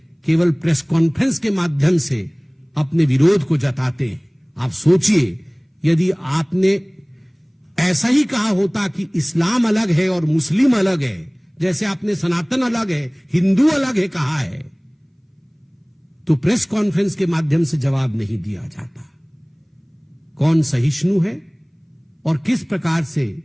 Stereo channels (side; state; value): both; identical; correlation 1.00